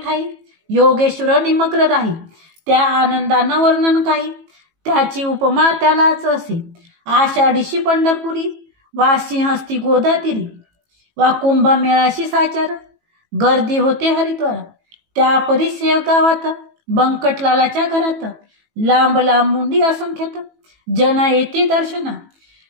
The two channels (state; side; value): late; left; 18 ms